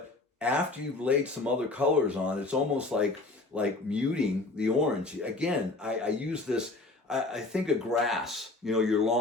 after you've laid some other colors on, it's almost like like muting the orange. Again, I use this, I think of grass, you know, your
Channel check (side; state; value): right; quieter; 3.2 dB